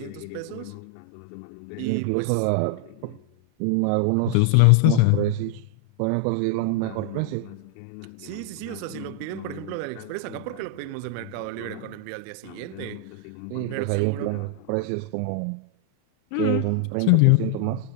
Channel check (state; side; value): different; both; correlation 0.00